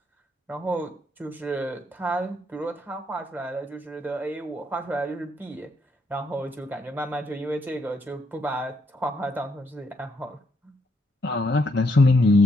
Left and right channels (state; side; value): normal; both; correlation 0.75